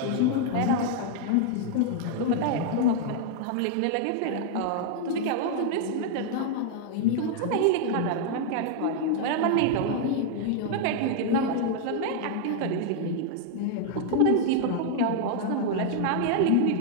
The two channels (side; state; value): both; different; correlation 0.00